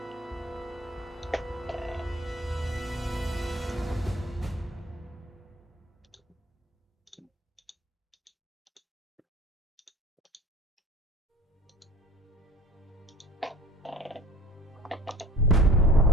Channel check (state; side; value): normal; both; correlation 0.45